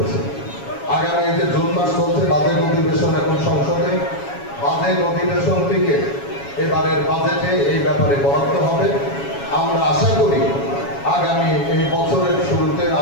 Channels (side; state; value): right; late; 7.2 ms